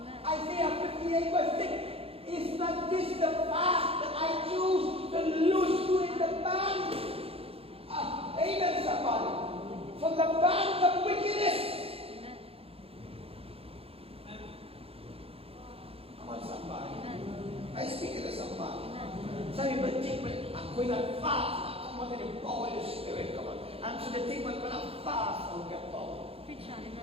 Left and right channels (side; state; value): left; late; 0.28 ms